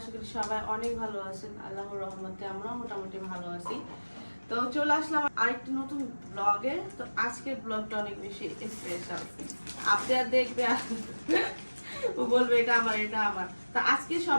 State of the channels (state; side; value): inverted; both; correlation -1.00